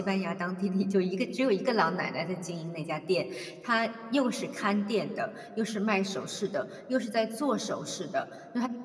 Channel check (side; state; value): both; identical; correlation 1.00